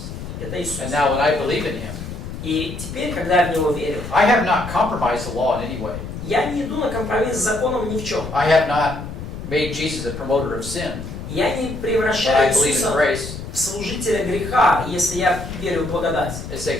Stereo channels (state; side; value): noise; left; rumble, 9 dB below the sound